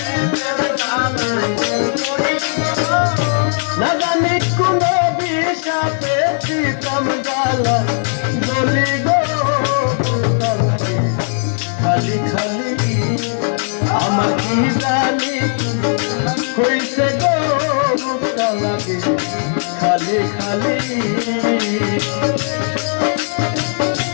গালায় বলি গো না জানি কোন বিষাতে পিছল গালায় বলি গো খালি খালি আমার কি জানি হইছে গো বুকটা লাগে খালি খালি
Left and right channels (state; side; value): silent; right; digital silence